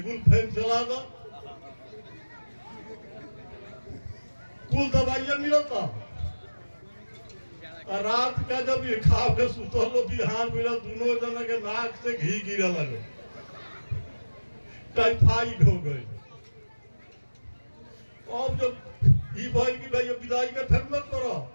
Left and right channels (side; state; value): both; inverted; correlation -1.00